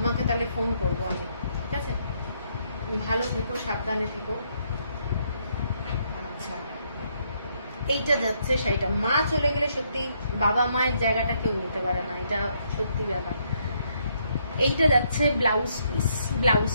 তাহলে ফোন করবো আমি, ঠিক আছে। ভালো থেকো, সাবধানে থেকো। আচ্ছা, এইটা যাচ্ছে শাড়িটা, মা চলে গেলে সত্যি বাবা মায়ের জায়গাটা কেউ নিতে পারে না, এটা সত্যি ব্যাপার। এইটা যাচ্ছে ব্লাউজ পিস, ব্লাউজ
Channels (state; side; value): inverted; both; correlation -0.73